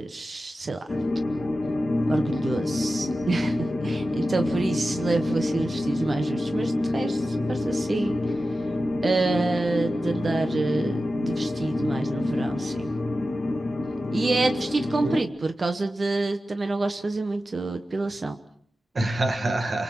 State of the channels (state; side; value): normal; both; correlation 0.93